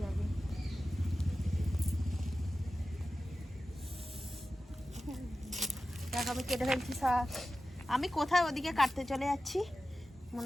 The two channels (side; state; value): both; normal; correlation 0.94